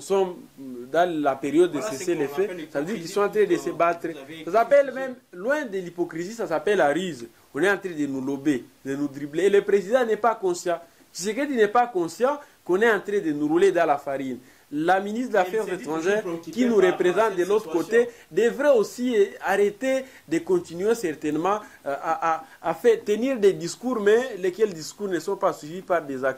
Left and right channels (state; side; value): identical; both; correlation 1.00